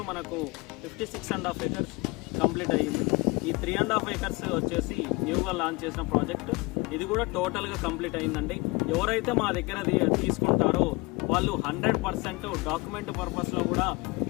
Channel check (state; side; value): quieter; right; 25.5 dB